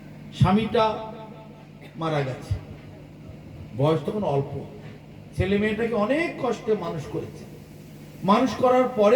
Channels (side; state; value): both; identical; correlation 1.00